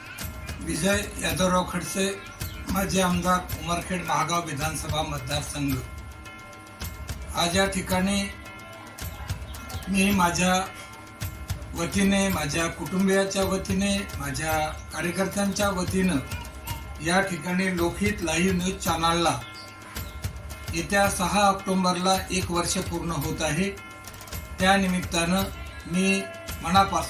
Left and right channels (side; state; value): both; identical; correlation 1.00